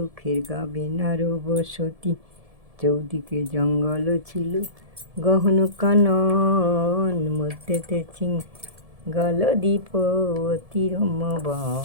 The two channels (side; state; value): left; late; 1.7 ms